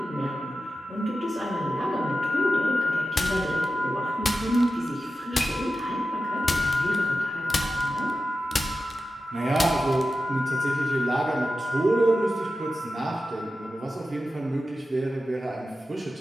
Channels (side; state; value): both; normal; correlation 0.93